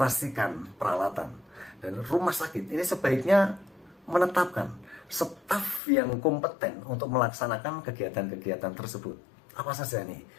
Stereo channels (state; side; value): drops out; right; at 5.8 s